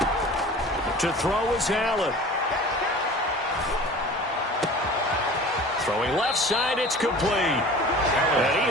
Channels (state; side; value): normal; both; correlation 0.41